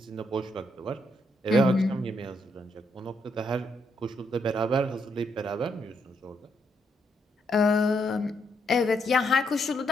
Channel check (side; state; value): both; normal; correlation 0.77